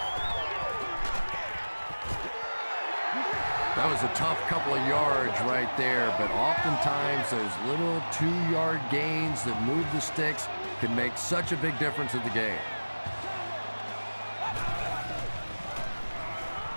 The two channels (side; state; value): both; inverted; correlation -1.00